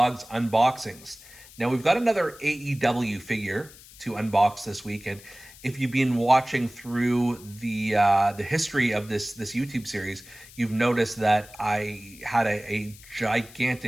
Unboxings. Now, we've got another AEW figure to unbox this week. And if you've been watching through the history of this YouTube series, you've noticed that I had a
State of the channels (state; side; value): noise; left; hiss, 21 dB below the sound